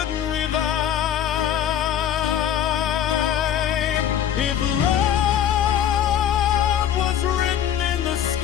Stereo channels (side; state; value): right; quieter; 10.0 dB